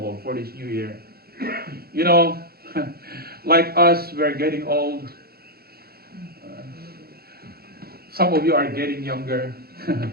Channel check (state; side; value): late; left; 0.45 ms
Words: for this new year? You know, like us, we're getting old. Some of you are getting younger.